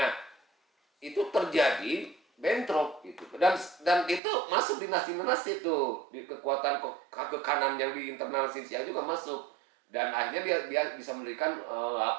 itu terjadi bentrok gitu. Dan itu masuk dinasti-dinasti itu, di kekuatan kekanan yang di internal Xinjiang juga masuk. Dan akhirnya dia bisa mendirikan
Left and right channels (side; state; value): left; drops out; at 4.2 s